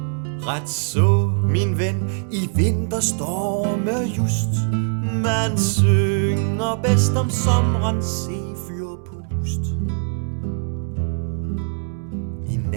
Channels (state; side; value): silent; left; 64 dB below the other